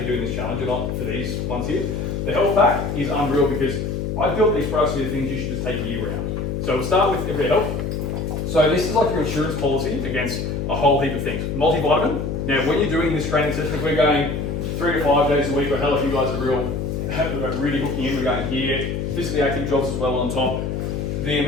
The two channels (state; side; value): noise; left; hum, 2 dB below the sound